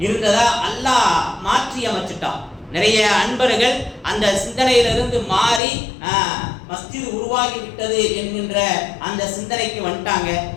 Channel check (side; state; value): right; drops out; at 5.6 s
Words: இருந்ததா அல்லாஹ் மாற்றி அமைச்சிட்டான். நிறைய அன்பர்கள் அந்த சிந்தனையிலிருந்து மாறி மஸ்ஜித் உருவாகி விட்டது என்கின்ற அந்த சிந்தனைக்கு வந்துட்டாங்க.